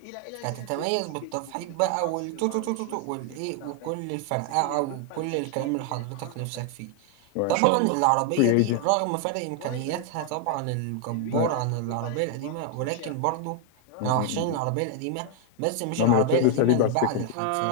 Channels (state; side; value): different; both; correlation 0.00